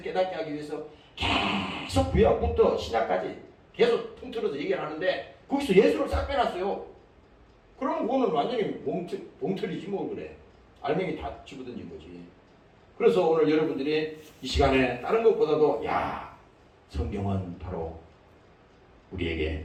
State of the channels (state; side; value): identical; both; correlation 1.00